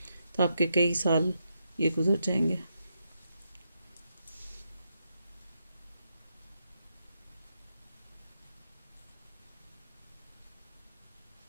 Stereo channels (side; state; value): both; inverted; correlation -0.82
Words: तो आपके कई साल ये गुजर जाएंगे।